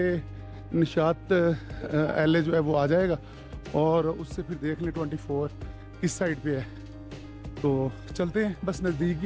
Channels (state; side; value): identical; both; correlation 1.00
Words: निशात एले जो है वो आ जाएगा और उससे फिर देख लें 24 किस साइड पे है। तो चलते हैं, बस नज़दीक